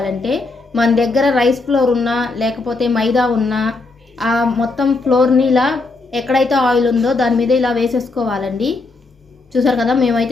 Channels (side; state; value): right; quieter; 3.5 dB